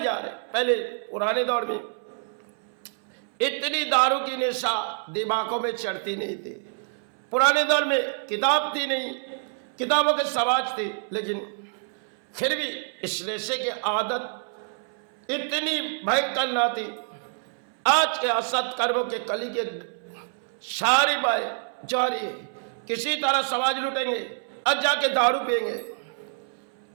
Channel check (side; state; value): left; silent; 60 dB below the other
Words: रहे। पहले पुराने दौर में इतनी दारू की नशा दिमागों में चढ़ती नहीं थी, पुराने दौर में किताब थी नहीं, किताबों के समाज थे, लेकिन फिर भी इस नशे की आदत इतनी भयंकर ना थी। आज के असत कर्मों के कली के सारी बाएं जारी है, किसी तरह समाज लूटेंगे और जाके दारू पिएंगे।